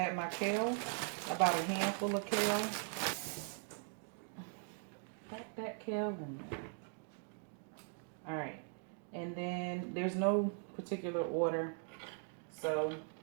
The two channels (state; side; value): silent; left; 51 dB below the other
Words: my kale, about a handful of kale. Pack that kale in there. Alright. And then there's no particular order. So